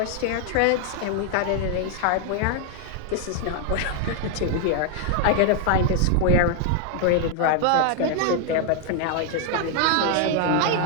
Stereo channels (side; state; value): both; different; correlation 0.00